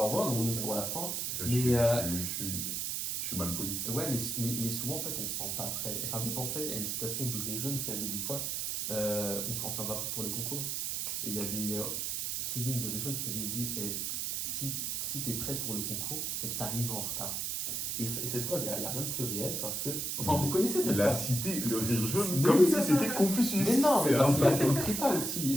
revoir, on est sur la fin. Je Mais, suis Je suis mal poli. Ouais, mais souvent, en fait, on ne se sent pas prêt. Et ça me fait penser à une citation du Réjeune qui avait dit quoi? On se sent pas prêt pour le concours. Et il y avait Kevin du Réjeune qui avait dit si tu es prêt pour le concours, c'est que tu arrives en retard. Et cette phrase, il n'y a rien de plus réel parce que. Enfin, vous connaissez cette Il a phrase? cité le rire jaune Mais comme oui, si c'est c'était Confucius. Mais non, mais C'est parce qu'il a un- fait une prépa aussi.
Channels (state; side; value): noise; right; hiss, 1 dB below the sound